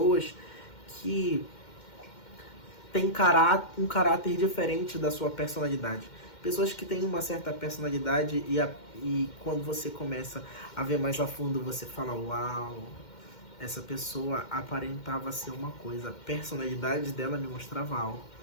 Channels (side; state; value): right; late; 2.1 ms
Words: que têm um caráter diferente da sua personalidade. Pessoas que têm uma certa personalidade e quando você começa a ver mais a fundo, você fala, uau, essa pessoa aparentava ser uma coisa, a personalidade dela me mostrava algo.